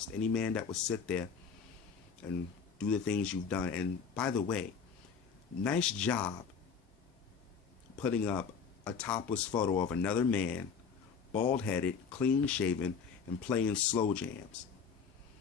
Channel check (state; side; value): quieter; right; 6.1 dB